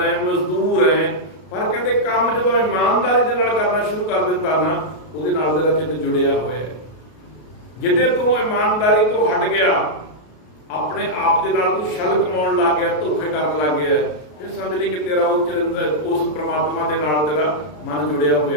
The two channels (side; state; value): right; late; 33 ms